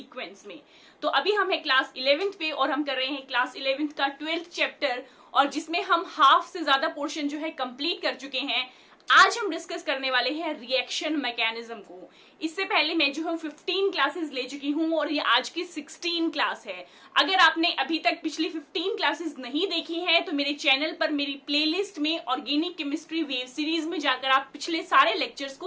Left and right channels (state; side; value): identical; both; correlation 1.00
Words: में। तो अभी हम है क्लास 11th पे और हम कर रहे हैं क्लास 11th का 12th चैप्टर, और जिसमें हम हाफ से ज्यादा पोर्शन जो है कंप्लीट कर चुके हैं। आज हम डिस्कस करने वाले हैं रिएक्शन मैकेनिज्म को। इससे पहले मैं जो हूँ 15 क्लासेस ले चुकी हूँ और ये आज की 16 क्लास है। अगर आपने अभी तक पिछली 15 क्लासेस नहीं देखी हैं तो मेरे चैनल पर मेरी प्लेलिस्ट में ऑर्गेनिक केमिस्ट्री वेव सीरीज में जाकर आप पिछले सारे लेक्चर्स